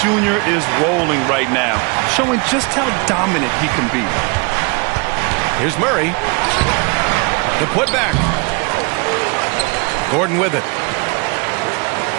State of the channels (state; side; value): quieter; left; 31.3 dB